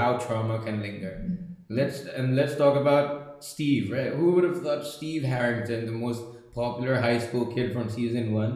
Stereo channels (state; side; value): identical; both; correlation 1.00